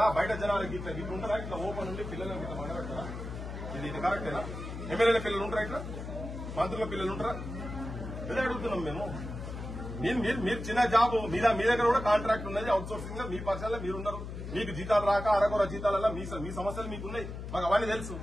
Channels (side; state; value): left; noise; hum, 8 dB below the sound